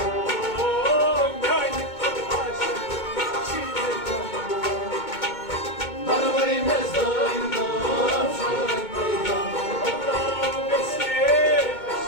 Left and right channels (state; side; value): late; right; 2.2 ms